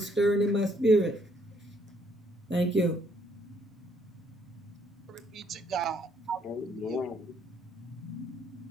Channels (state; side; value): normal; both; correlation 0.68